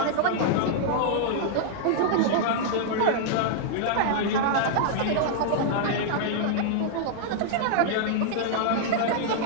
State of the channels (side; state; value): both; different; correlation -0.01